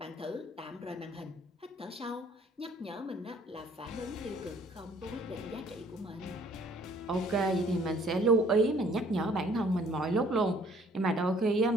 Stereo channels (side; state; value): both; normal; correlation 0.59